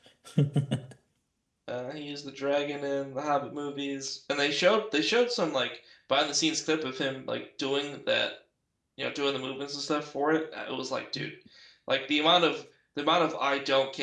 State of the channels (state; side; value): identical; both; correlation 1.00